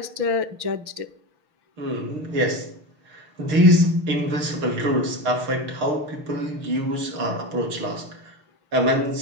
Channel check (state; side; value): late; left; 6.4 ms